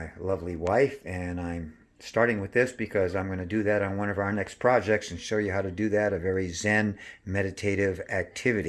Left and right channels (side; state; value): both; identical; correlation 1.00